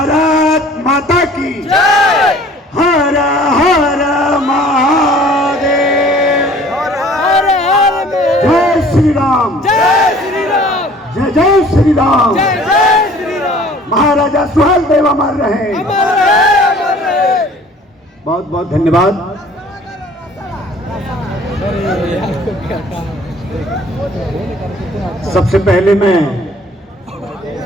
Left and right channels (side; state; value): both; normal; correlation 0.51